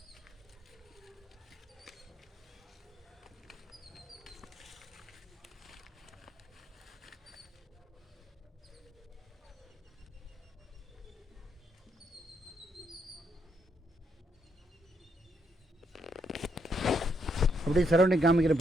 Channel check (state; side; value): normal; both; correlation 0.76